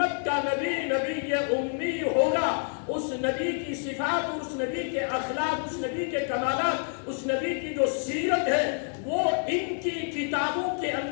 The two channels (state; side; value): silent; right; 59 dB below the other